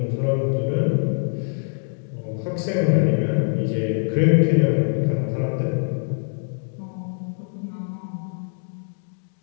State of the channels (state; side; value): silent; right; digital silence